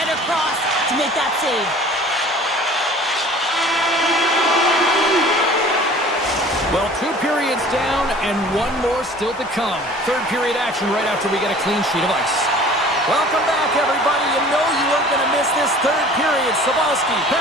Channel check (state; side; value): normal; both; correlation 0.47